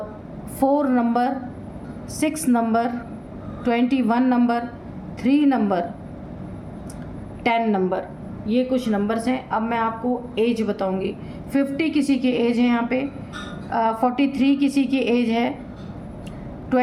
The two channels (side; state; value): both; identical; correlation 1.00